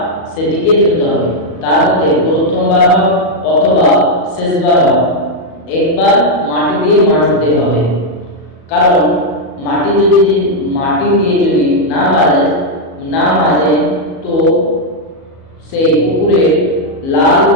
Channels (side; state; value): right; late; 37 ms